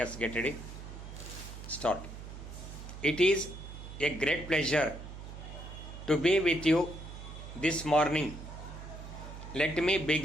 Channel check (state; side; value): noise; right; hum, 11 dB below the sound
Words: get ready. Start. It is a great pleasure to be with you this morning. Let me